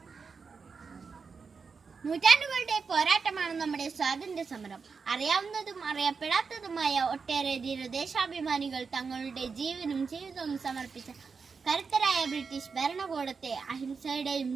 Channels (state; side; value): quieter; left; 5.2 dB